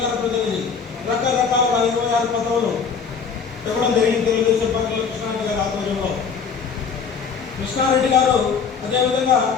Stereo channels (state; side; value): quieter; right; 6.0 dB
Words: ప్రతినిధి, రకరకాల 26 పదవులు ఇవ్వడం జరిగింది తెలుగుదేశం పార్టీలో కృష్ణారెడ్డి గారి ఆధ్వర్యంలో. కృష్ణారెడ్డి గారు అదేవిధంగా